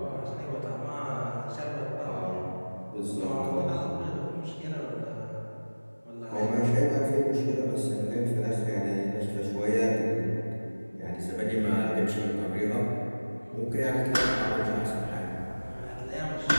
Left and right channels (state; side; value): inverted; both; correlation -1.00